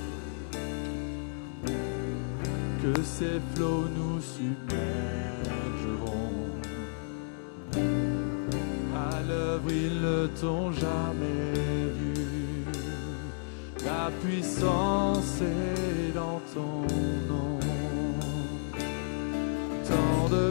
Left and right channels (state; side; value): silent; right; digital silence